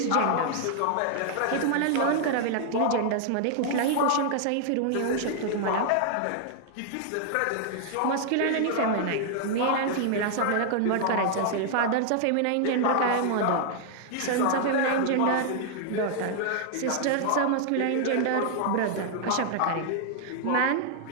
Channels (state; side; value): different; both; correlation -0.01